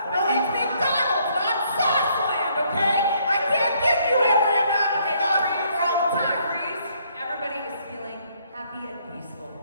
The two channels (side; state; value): both; inverted; correlation -0.67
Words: Well, it's McDonald's, not Sauceland, okay? I can't give you every amount of sauces all the time. Freeze. Everybody is feeling happy and peaceful.